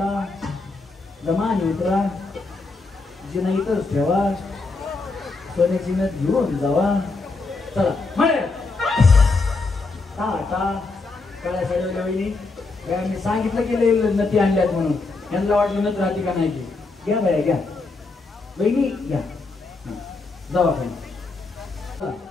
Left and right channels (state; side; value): quieter; right; 3.7 dB